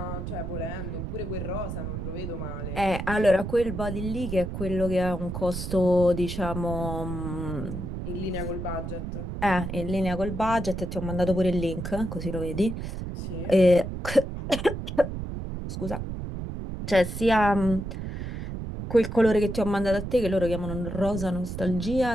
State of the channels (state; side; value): noise; right; rumble, 6 dB below the sound